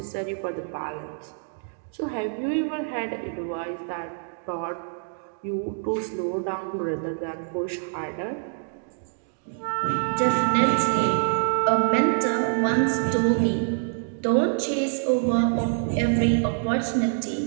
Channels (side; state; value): left; silent; digital silence